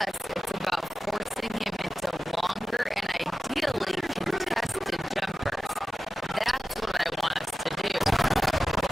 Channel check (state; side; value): normal; both; correlation 0.95